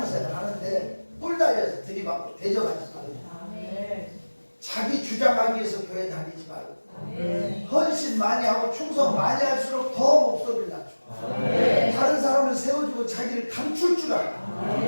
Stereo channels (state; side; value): inverted; both; correlation -1.00